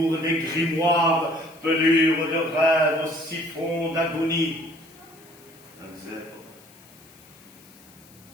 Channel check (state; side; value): noise; left; hiss, 25 dB below the sound